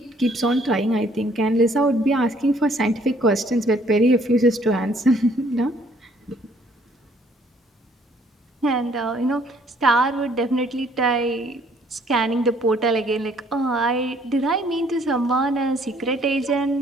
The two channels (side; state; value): both; normal; correlation 0.62